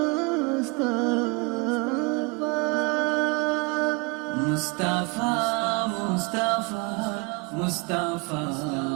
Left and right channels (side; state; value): left; quieter; 29.6 dB